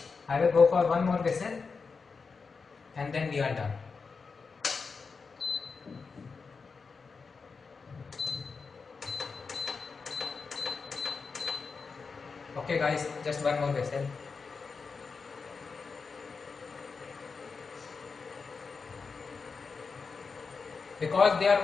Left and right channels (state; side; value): quieter; right; 4.9 dB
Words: I will go for one more whistle and then we are done. Okay guys, just one more whistle. Because there